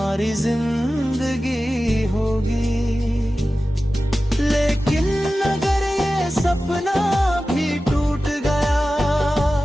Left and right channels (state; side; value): normal; both; correlation 0.95